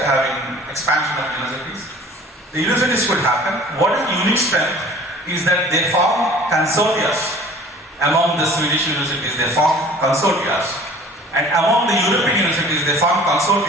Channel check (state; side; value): normal; both; correlation 0.47